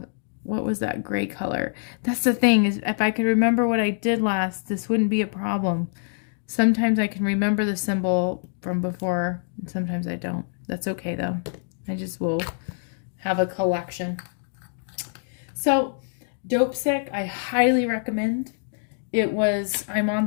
what was that gray color? That's the thing, is if I could remember what I did last, this wouldn't be a problem. Sometimes I can remember the symbol from before, and sometimes I don't. That's okay though. I just will have a collection. So, Dope Sick, I highly recommend. I'm on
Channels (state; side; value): silent; right; digital silence